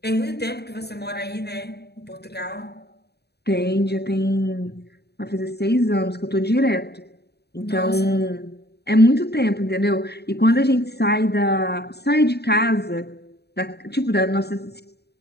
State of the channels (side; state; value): right; late; 0.48 ms